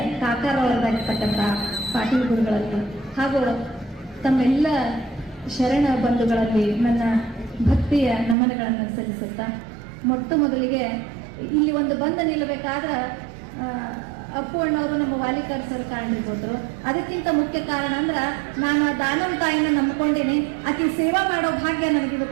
ಕಾಕಾರವರಾಗಿರ್ತಕ್ಕಂಥ ಪಾಟೀಲ್ ಗುರುಗಳಲ್ಲಿ ಹಾಗೂ ತಮ್ಮೆಲ್ಲ ಶರಣ ಬಂಧುಗಳಲ್ಲಿ ನನ್ನ ಭಕ್ತಿಯ ನಮನಗಳನ್ನು ಸಲ್ಲಿಸುತ್ತಾ, ಮೊಟ್ಟ ಮೊದಲಿಗೆ ಇಲ್ಲಿ ಒಂದು ಬಂದು ನಿಲ್ಲಬೇಕಾದ ಅಪ್ಪು ಅಣ್ಣವರು ನಮ್ಮ ವಾಲಿಕಾರ್ ಸರ್ ಕಾರಣಿರ್ಬೋದ್ರು. ಅದಕ್ಕಿಂತ ಮುಖ್ಯ ಕಾರಣ ಅಂದ್ರ ನಾನು ಆ ದಾನಮ್ಮ ತಾಯಿನ ನಂಬ್ಕೊಂಡಿನಿ. ಆಕೆ ಸೇವಾ ಮಾಡೋ ಭಾಗ್ಯ ನನಗೆ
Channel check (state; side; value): drops out; left; at 8.3 s